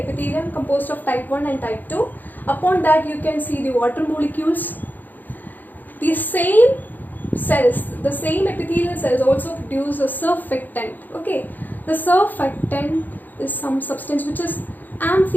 composed of type 1 and type 2. Upon that you can see the water molecules. The same cells, the same epithelial cells also produce a surfactant. Okay, the surfactant is some substance which is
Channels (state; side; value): late; right; 0.086 ms